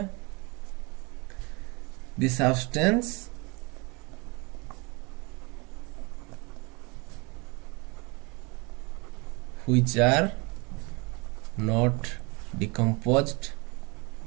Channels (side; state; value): left; quieter; 28.5 dB